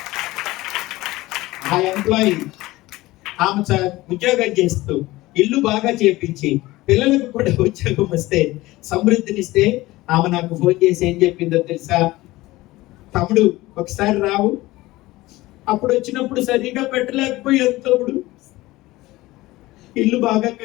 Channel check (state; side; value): quieter; right; 18.7 dB